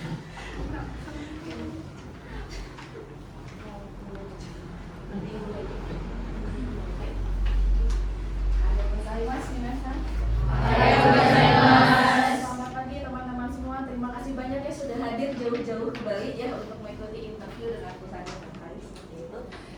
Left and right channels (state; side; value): identical; both; correlation 1.00